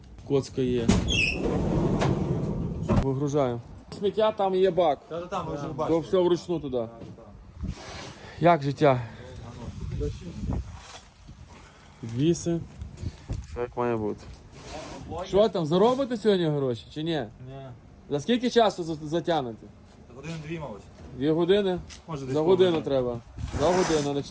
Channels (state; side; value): identical; both; correlation 1.00